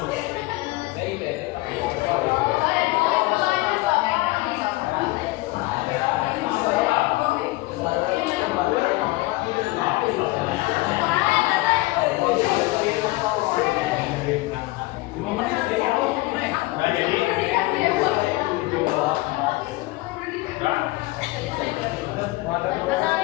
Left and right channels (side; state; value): right; quieter; 20.9 dB